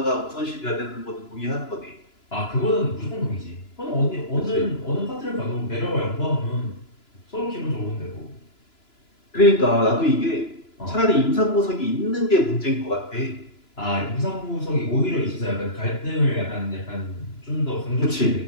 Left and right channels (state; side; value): late; right; 2.9 ms